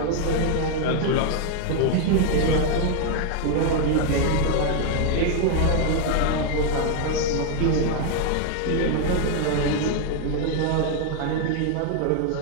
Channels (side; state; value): both; different; correlation 0.01